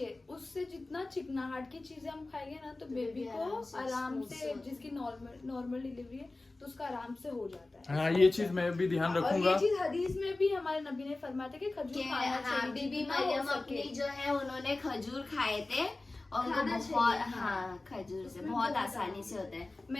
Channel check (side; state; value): right; quieter; 3.1 dB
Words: उससे जितना चिकनाहट की चीजें हम खाएंगे ना तो बेबी को आराम से, जिसकी नॉर्मल डिलीवरी है तो उसका आराम से हो जाता है। हाँ ये चीज मैं भी ध्यान और रखूंगा। ये चीज हदीस में भी हमारे नबी ने फरमाया था कि खजूर खाना हाँ, चाहिए बीबी जितना हो मरियम सके। अपनी जो है उन्होंने खजूर खाए थे और उनको खाना बहुत, चाहिए, हाँ खजूर से उसमें बहुत बहुत आसानी से होता है।